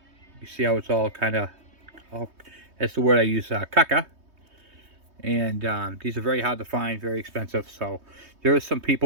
You see how it's all kind of, that's the word I use, caca. And these are very hard to find, very expensive. So there are some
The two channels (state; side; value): late; left; 3.2 ms